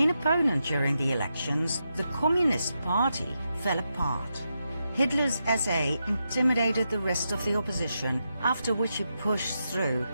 opponent during the elections, the Communist Party, fell apart. Hitler's SA intimidated the rest of the opposition, after which he pushed through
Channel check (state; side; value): inverted; both; correlation -0.85